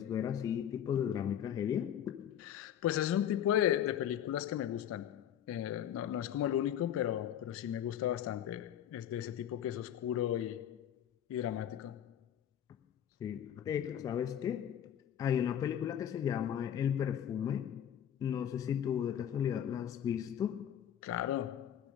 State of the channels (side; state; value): right; quieter; 10.0 dB